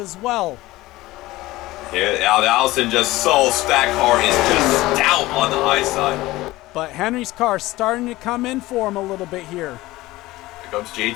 well. Yeah, Allison just that car is just stout on the high side. But Henry's car starting to come in for him a little bit here. Here comes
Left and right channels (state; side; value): quieter; right; 18.4 dB